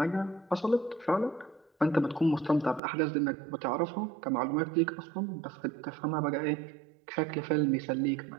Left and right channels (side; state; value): left; drops out; at 2.8 s